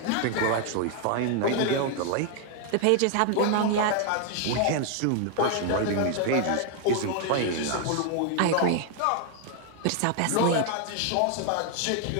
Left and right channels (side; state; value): both; different; correlation 0.00